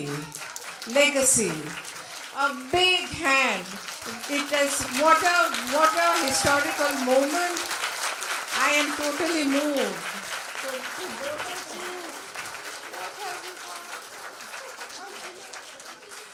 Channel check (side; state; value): both; identical; correlation 1.00